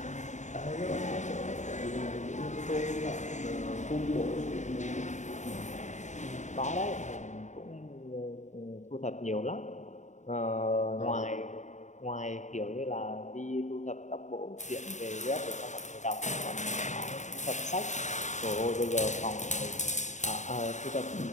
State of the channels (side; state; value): right; late; 0.34 ms